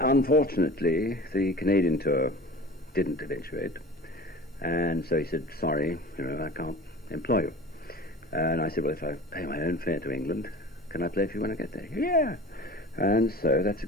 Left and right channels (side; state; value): both; normal; correlation 0.39